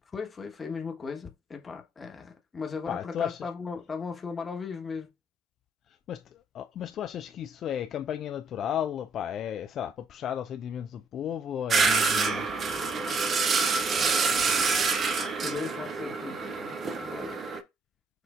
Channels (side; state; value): both; normal; correlation 0.68